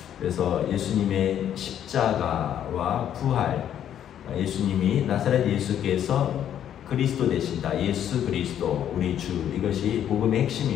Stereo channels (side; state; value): right; quieter; 10.1 dB